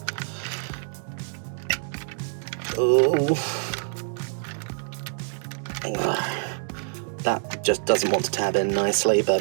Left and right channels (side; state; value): left; silent; digital silence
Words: Oh. That just doesn't want to tab in nicely,